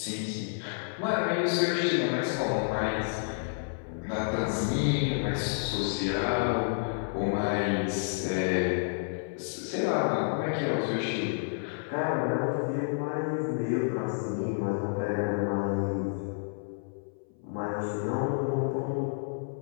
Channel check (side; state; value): right; silent; 58 dB below the other